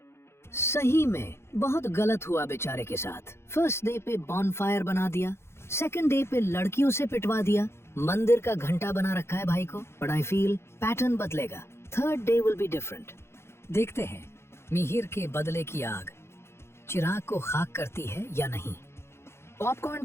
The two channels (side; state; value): right; late; 0.12 ms